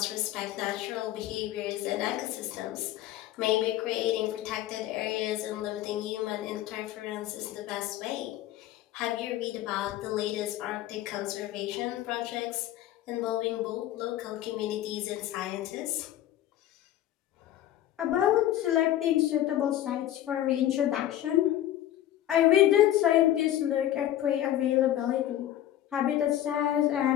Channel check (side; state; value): right; quieter; 12.8 dB